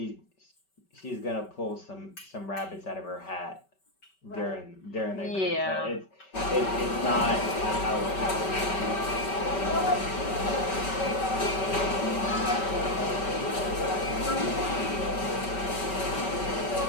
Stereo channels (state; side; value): late; right; 5.2 ms